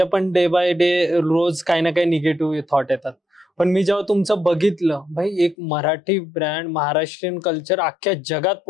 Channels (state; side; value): drops out; right; at 5.6 s